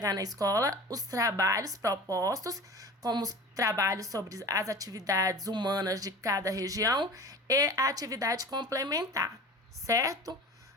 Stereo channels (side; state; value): both; normal; correlation 0.37